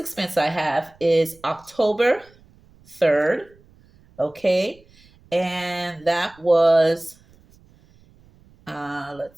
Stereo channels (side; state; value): right; noise; rumble, 29 dB below the sound